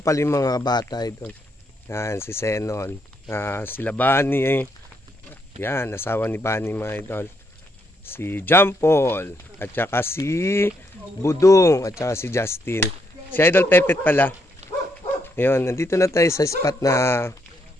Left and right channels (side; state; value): both; normal; correlation 0.76